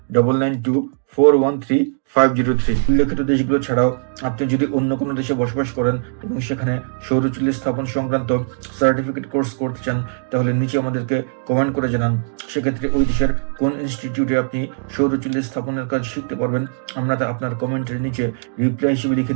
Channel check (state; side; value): silent; left; digital silence